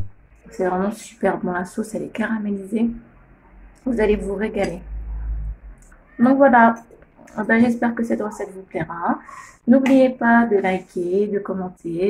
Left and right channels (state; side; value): identical; both; correlation 1.00